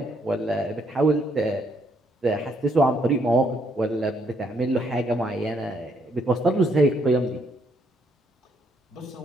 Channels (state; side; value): normal; both; correlation 0.71